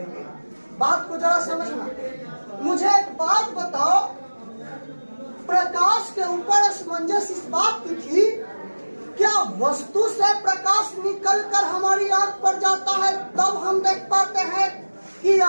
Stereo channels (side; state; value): both; inverted; correlation -1.00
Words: बात को जरा समझना। मुझे एक बात बताओ, प्रकाश के ऊपर असमंजस इस बात की थी, क्या वस्तु से प्रकाश निकलकर हमारी आंख पर जाता है तब हम देख पाते हैं, कि